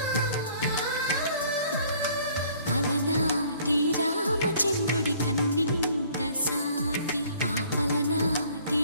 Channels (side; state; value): both; inverted; correlation -0.57